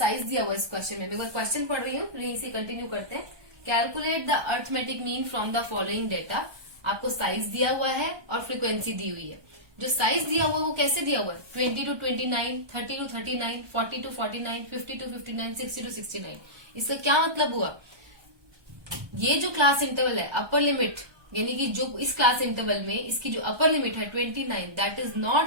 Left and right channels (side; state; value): left; late; 1.2 ms